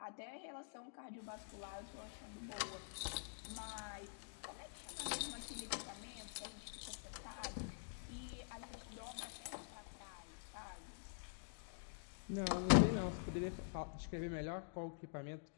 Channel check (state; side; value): silent; right; digital silence